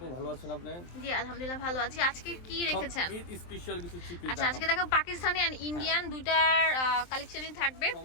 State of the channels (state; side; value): late; right; 23 ms